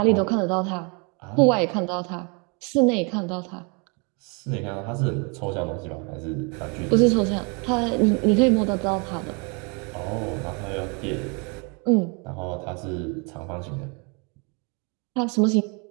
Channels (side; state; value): left; quieter; 33.1 dB